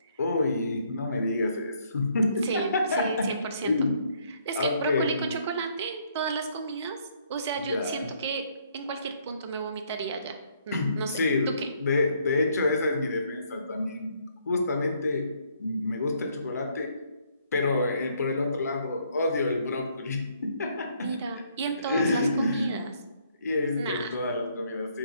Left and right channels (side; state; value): both; inverted; correlation -0.68